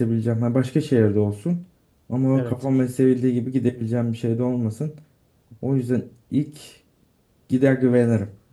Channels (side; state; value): both; identical; correlation 1.00